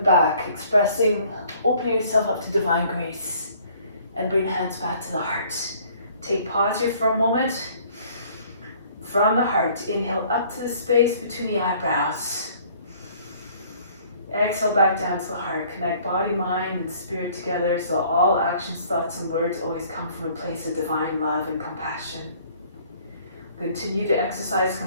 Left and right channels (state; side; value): inverted; both; correlation -0.57